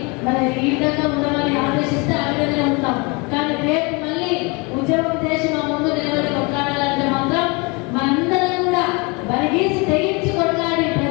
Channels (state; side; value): quieter; right; 28.9 dB